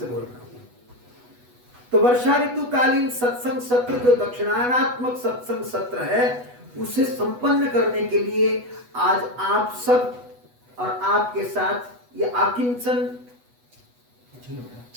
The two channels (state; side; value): late; left; 8.1 ms